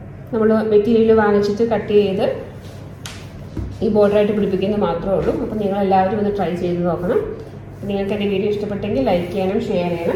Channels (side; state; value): both; identical; correlation 1.00